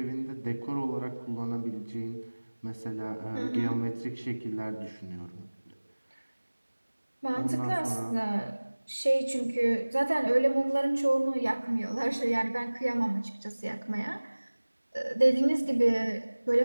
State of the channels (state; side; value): inverted; both; correlation -1.00